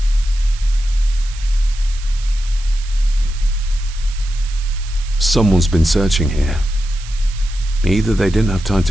Someone's been searching here. Either they didn't have time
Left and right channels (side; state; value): right; noise; hiss, 17 dB below the sound